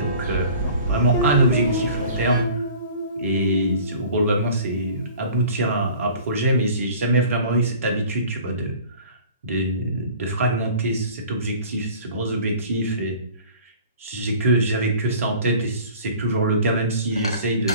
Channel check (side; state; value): both; inverted; correlation -0.47